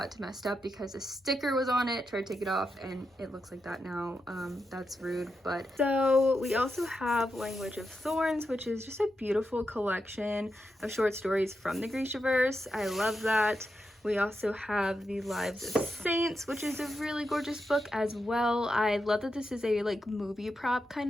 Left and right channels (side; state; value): both; normal; correlation 0.87